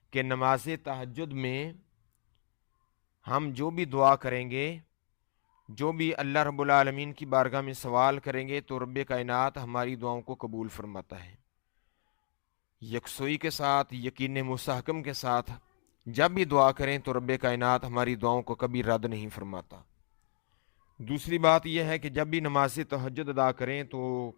کہ نماز تہجد میں ہم جو بھی دعا کریں گے، جو بھی اللہ رب العالمین کی بارگاہ میں سوال کریں گے، تو رب کائنات ہماری دعاؤں کو قبول فرماتا ہے۔ یکسوئی کے ساتھ، یقین مستحکم کے ساتھ جب بھی دعا کریں تو رب کائنات ہماری دعاؤں کو کبھی رد نہیں فرماتا۔ دوسری بات یہ ہے کہ جب بھی نماز تہجد ادا کریں تو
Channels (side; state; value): right; silent; digital silence